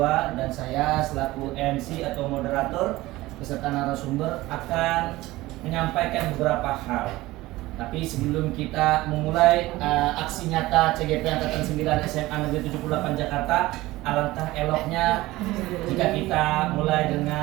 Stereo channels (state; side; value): quieter; left; 18.4 dB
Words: dan saya selaku MC atau moderator beserta narasumber akan menyampaikan beberapa hal. Tapi sebelum kita memulai aksi nyata CGP Angkatan 9 SMA Negeri 78 Jakarta, alangkah eloknya jika kita mulai